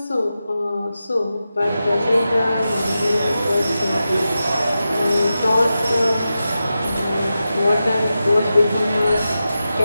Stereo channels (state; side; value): inverted; both; correlation -0.91